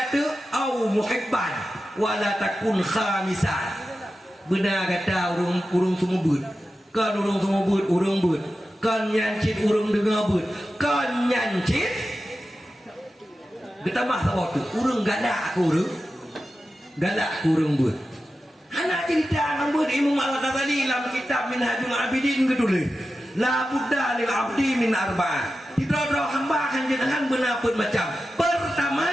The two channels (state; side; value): normal; both; correlation 0.92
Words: tu au muhibban wala takun khamisan benar kata urung semua but kan urung semua but urung but kan nyancit urung dengar but kan nyancit kita mah sabah tu urung galak urung but anak cerita nambut Imam Al-Ghazali dalam kitab Minhajul Abidin ketulis la budda lil abdi min arba'ah tidak hamba akan jenengan benapun macam pertama